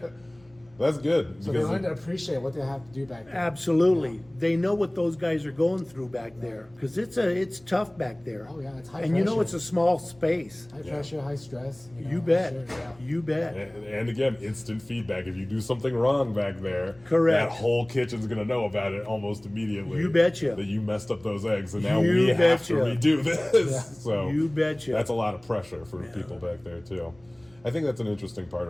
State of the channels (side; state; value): left; noise; hum, 29 dB below the sound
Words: That's good. So they because learn to appreciate what they have to do back there. Absolutely. They know what those guys are going through back there. Because it's tough back there. Oh, yeah, it's high And you know pressure. it's a small space. High pressure, high stress. You bet. Sure, yeah. You bet. and again, instant feedback. If you do something wrong back there, Correct. that whole kitchen's going to know about it almost immediately. You betcha. That you messed up those eggs, and now You we have to betcha. redo this. So You betcha. That's a lot of pressure for people back there too. I think that's an interesting part